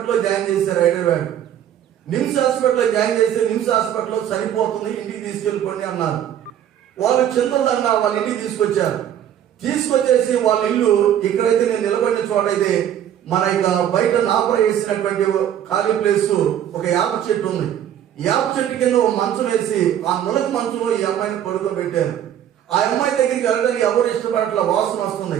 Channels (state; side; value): quieter; left; 10.4 dB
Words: జాయిన్ చేశారు హైదరాబాద్. నిమ్స్ హాస్పిటల్లో జాయిన్ చేసి నిమ్స్ హాస్పిటల్లో చనిపోతుంది, ఇంటికి తీసుకెళ్ళిపోండి అన్నారు. వాళ్ళు చింతదండ వాళ్ళ ఇంటికి తీసుకొచ్చేసి వాళ్ళ ఇల్లు ఇక్కడైతే నేను నిలబడిన చోటైతే మన ఇక బయట నాపర వేసినటువంటి ఖాళీ ప్లేస్ ఒక యాప చెట్టు ఉంది. యాప చెట్టు కింద ఒక మంచం వేసి ఆ నులక మంచంలో ఈ అమ్మాయిని పడుకోబెట్టారు. ఆ అమ్మాయి దగ్గరికి వెళ్ళడానికి ఎవరు ఇష్టపడట్ల, వాసన వస్తుంది,